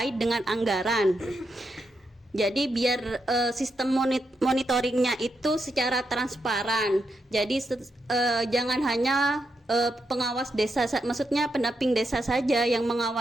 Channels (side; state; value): both; normal; correlation 0.83